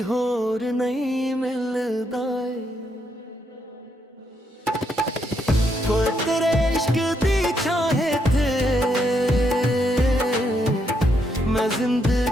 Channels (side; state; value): both; normal; correlation 0.77